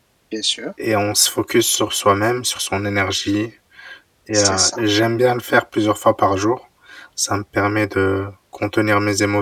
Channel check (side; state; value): both; identical; correlation 1.00